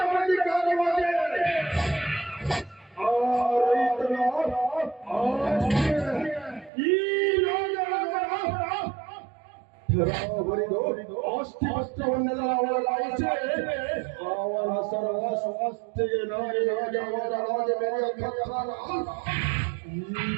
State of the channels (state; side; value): drops out; left; at 6.7 s